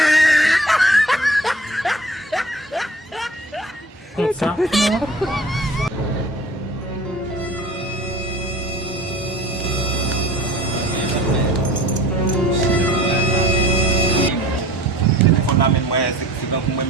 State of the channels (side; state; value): both; normal; correlation 0.45